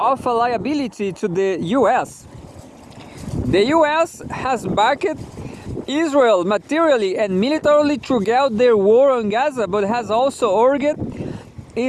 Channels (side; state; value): both; identical; correlation 1.00